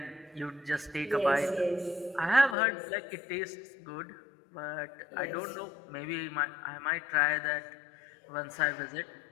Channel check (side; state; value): right; drops out; at 2.6 s